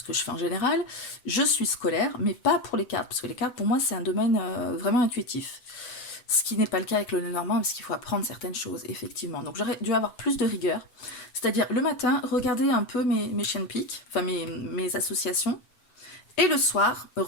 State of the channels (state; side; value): late; right; 7.9 ms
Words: que je fais en général. Je suis scolaire, mais pas pour les cartes, parce que les cartes pour moi c'est un domaine vraiment intuitif. Ce qui n'est pas le cas avec le Lenormand, parce qu'il faut apprendre certaines choses, effectivement. Donc j'aurais dû avoir plus de rigueur. C'est-à-dire, le matin, regarder un peu mes chiens de pique, enfin mes associations, et le soir,